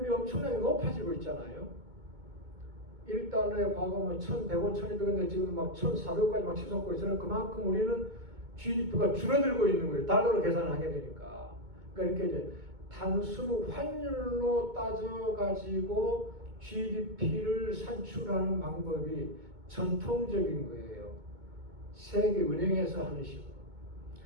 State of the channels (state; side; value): late; left; 2.2 ms